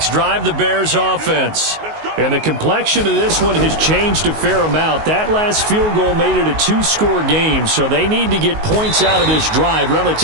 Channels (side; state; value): left; late; 19 ms